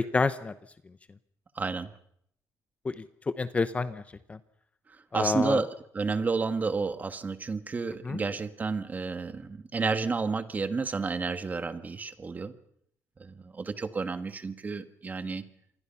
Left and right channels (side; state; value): both; normal; correlation 0.81